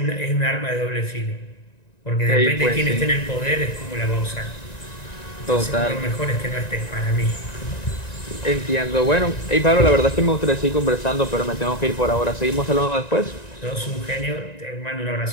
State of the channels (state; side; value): late; right; 1.9 ms